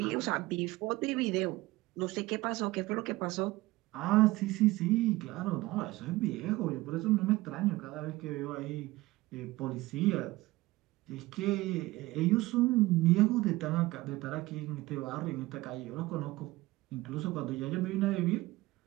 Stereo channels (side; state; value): left; quieter; 19.3 dB